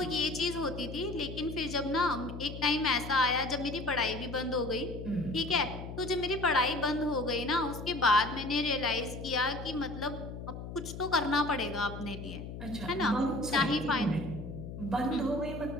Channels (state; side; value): noise; left; hum, 9 dB below the sound